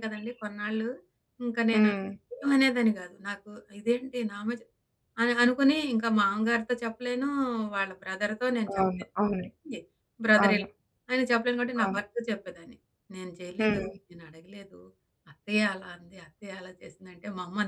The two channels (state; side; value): identical; both; correlation 1.00